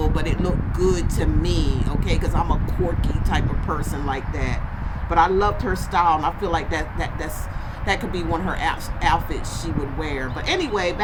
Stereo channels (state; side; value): identical; both; correlation 1.00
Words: but it looked good to me, okay? Because I'm a quirky type of person like that. But I loved her style, and I feel like that could be one of her outfits she would wear. But anyway,